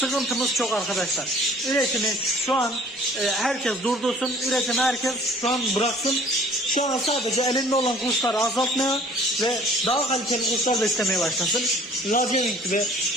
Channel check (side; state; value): both; normal; correlation 0.52